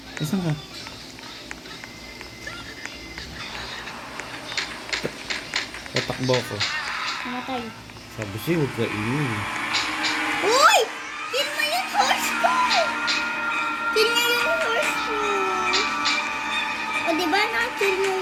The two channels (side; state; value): both; identical; correlation 1.00